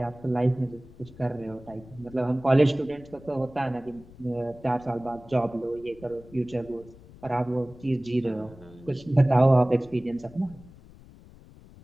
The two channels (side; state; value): left; noise; rumble, 21 dB below the sound